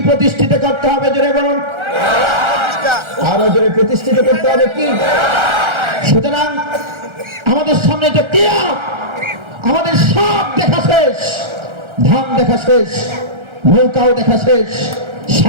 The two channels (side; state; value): left; late; 1.3 ms